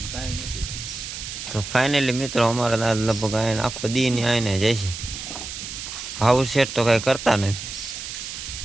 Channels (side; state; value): right; noise; hiss, 8 dB below the sound